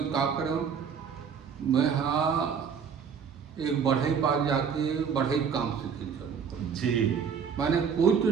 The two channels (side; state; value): left; quieter; 6.7 dB